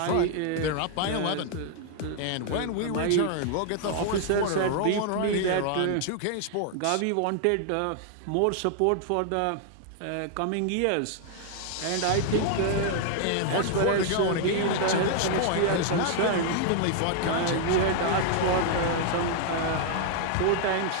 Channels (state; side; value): different; both; correlation 0.00